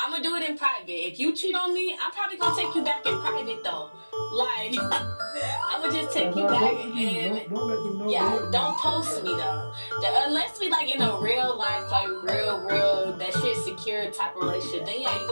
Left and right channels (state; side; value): inverted; both; correlation -1.00